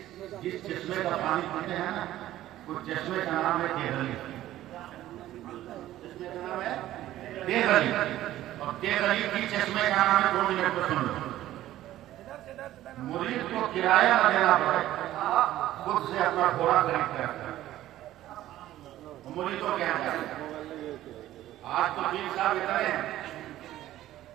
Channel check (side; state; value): left; quieter; 14.1 dB